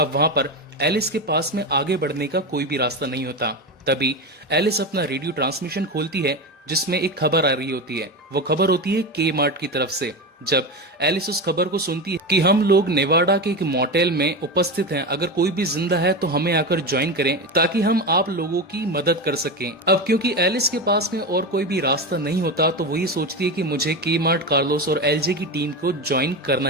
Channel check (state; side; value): normal; both; correlation 0.19